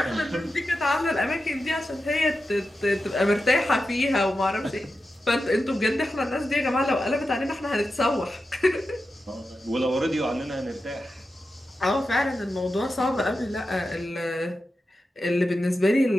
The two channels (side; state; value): both; normal; correlation 0.91